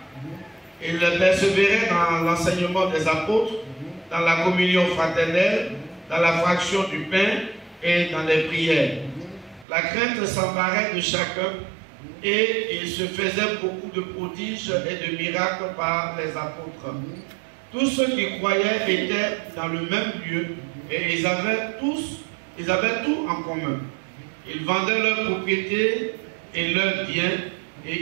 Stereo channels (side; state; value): left; drops out; at 9.7 s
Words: Ils persévéraient dans l'enseignement des apôtres, dans la communion fraternelle, dans la fraction du pain et dans les prières. La crainte s'emparait de chacun et il se faisait beaucoup de prodiges et de miracles par les apôtres. Tous ceux qui croyaient étaient dans le même lieu et ils avaient tout en commun. Ils vendaient leurs propriétés et leurs biens